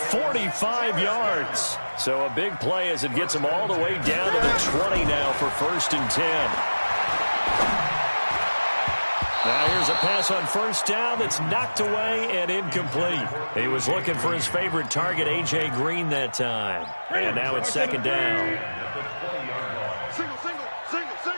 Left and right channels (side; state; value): both; inverted; correlation -1.00